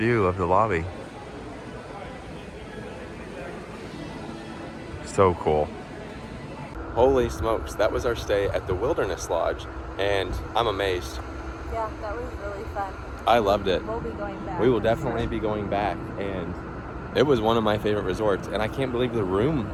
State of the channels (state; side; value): identical; both; correlation 1.00